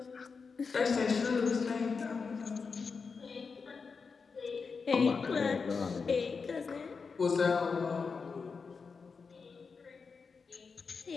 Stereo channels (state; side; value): quieter; right; 5.1 dB